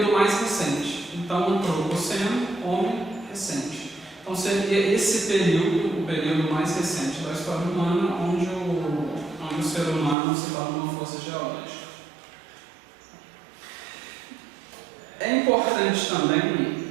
mais recente. Então, antropoceno, homem recente. Então, seria esse período, o período mais recente da história humana, onde o ser humano se torna uma força geológica. É importante também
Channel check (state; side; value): drops out; left; at 10.2 s